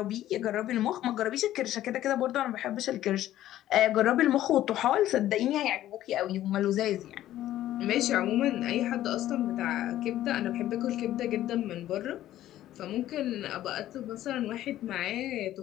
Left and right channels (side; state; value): right; quieter; 13.3 dB